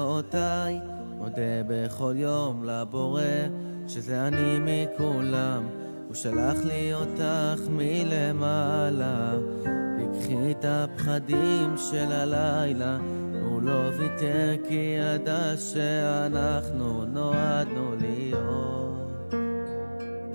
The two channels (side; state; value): both; inverted; correlation -1.00